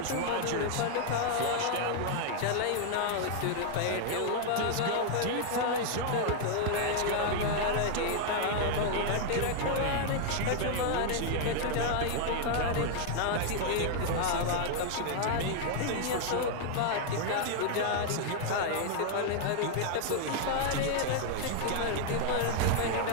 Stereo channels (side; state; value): both; different; correlation 0.00